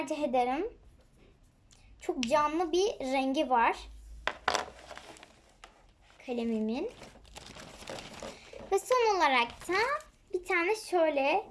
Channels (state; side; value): identical; both; correlation 1.00